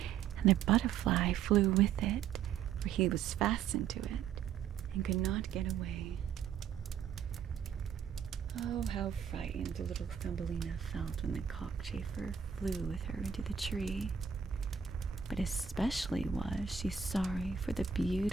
and the butterfly flew with it, for he was fastened to it and could not get away. Oh, how frightened little Thumbelina felt when the cockchafer flew with her into the tree. But especially was she sorry for the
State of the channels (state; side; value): quieter; left; 7.6 dB